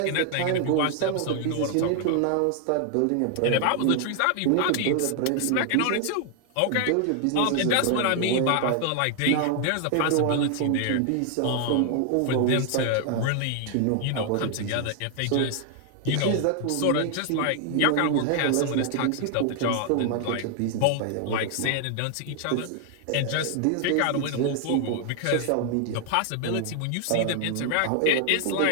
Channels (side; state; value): both; different; correlation 0.00